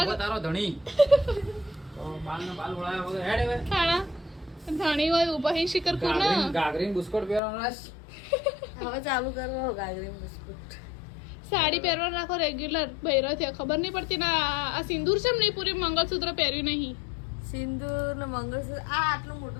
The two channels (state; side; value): drops out; right; at 7.4 s